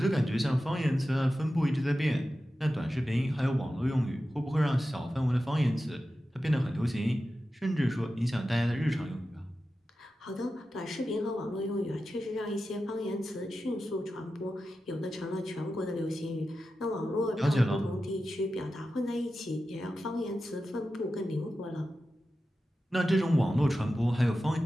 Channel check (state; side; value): normal; both; correlation 0.92